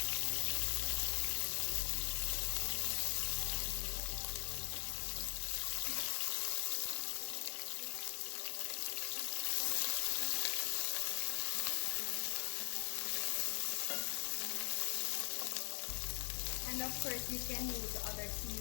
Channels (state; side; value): silent; right; digital silence